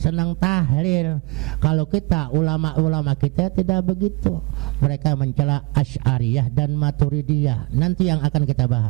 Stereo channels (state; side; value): quieter; left; 26.7 dB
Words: tahlil. Kalau kita, ulama-ulama kita tidak begitu. Mereka mencela Asy'ariyah dan Maturidiyah. Nanti yang akan kita